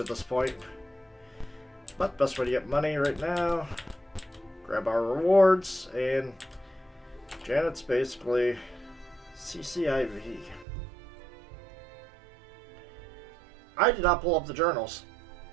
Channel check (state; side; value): drops out; left; at 10.7 s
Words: at this point. But best way to get money right now, grab our rewards, and Janet's basically CCIV. I did not pull up the journals.